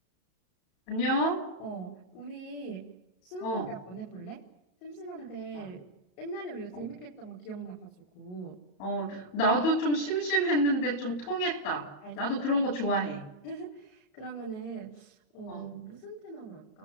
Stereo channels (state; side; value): late; right; 34 ms